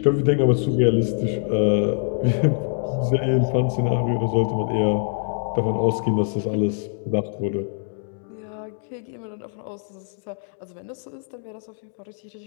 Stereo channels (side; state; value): right; silent; digital silence